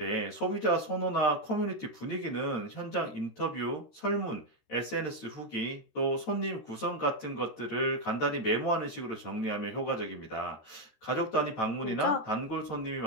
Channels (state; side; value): late; right; 13 ms